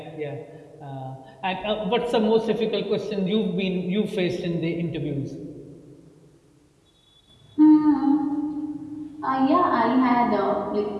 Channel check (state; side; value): identical; both; correlation 1.00